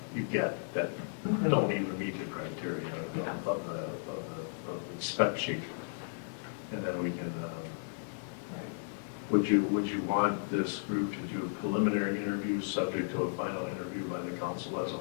you get that don't even meet the criteria of the spec sheet, and then we can. Would you want this group to do preliminary interviews subject to a final interview by the council as a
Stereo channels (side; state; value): right; silent; digital silence